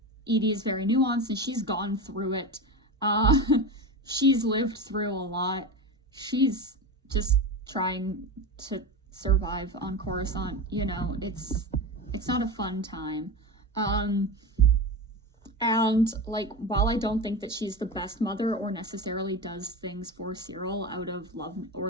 Eedy is very nuanced, and she's gone through it. She's lived through a lot. She's just trying to survive on Coruscant. It's not a fun time. And like, while I don't think that she's the best mother or necessarily does things for Cyril out of love or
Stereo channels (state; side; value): normal; both; correlation 0.23